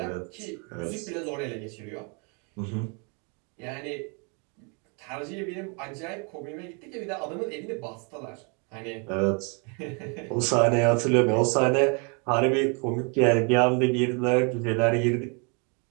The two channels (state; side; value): quieter; left; 35.3 dB